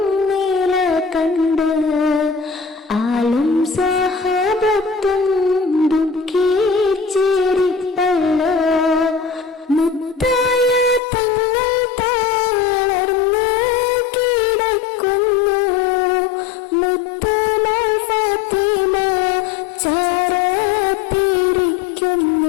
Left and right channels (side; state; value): right; drops out; at 11.0 s